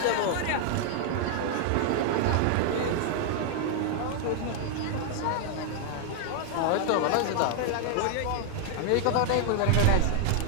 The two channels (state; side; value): different; both; correlation 0.00